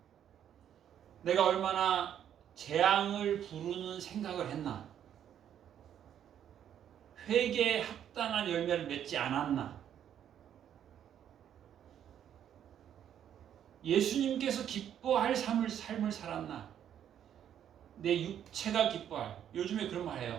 내가 얼마나 재앙을 부르는 생각을 했나. 회개에 합당한 열매를 맺지 않았나. 예수님께서 기뻐할 삶을 살았나. 내 육체가 기뻐할. 요즘에 그런 말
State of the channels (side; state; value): left; quieter; 9.8 dB